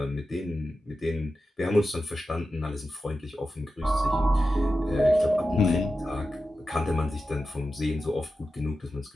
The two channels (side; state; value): both; normal; correlation 0.92